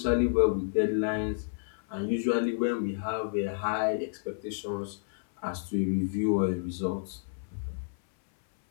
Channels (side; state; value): right; silent; 58 dB below the other